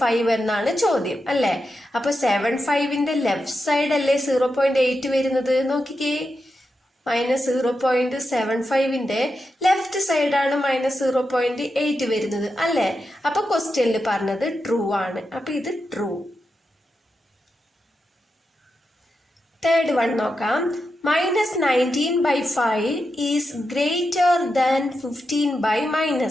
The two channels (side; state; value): both; normal; correlation 0.88